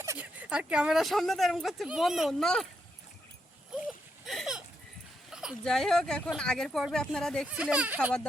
আর ক্যামেরার সামনে তো এরকম করছে, বন্ধ না। যাই হোক, এখন আগের পর্বে আপনারা দেখছিলেন খাবার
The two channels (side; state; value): both; normal; correlation 0.81